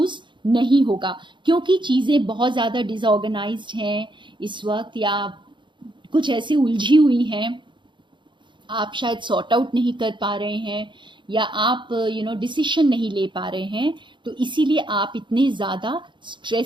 नहीं होगा, क्योंकि चीज़ें बहुत ज़्यादा डिसऑर्गेनाइज्ड हैं इस वक्त या कुछ ऐसी उलझी हुई हैं, आप शायद सॉर्ट आउट नहीं कर पा रहे हैं या आप डिसीजन नहीं ले पा रहे हैं। तो इसीलिए आप इतने ज़्यादा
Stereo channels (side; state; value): left; late; 0.23 ms